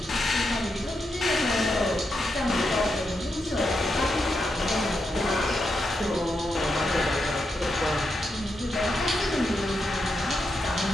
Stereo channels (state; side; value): normal; both; correlation 0.85